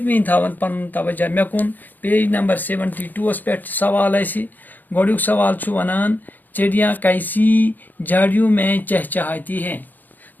تھاوان پنُن توجہ مےٚ کُن. پیج نمبر 72 پٮ۪ٹھ چھُ سوال اَسہِ. گۄڈٕنیُک سوال چھُ ونان چڑیاں کیسی جھاڑیوں میں چہچہاتی ہیں.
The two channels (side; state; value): right; late; 0.086 ms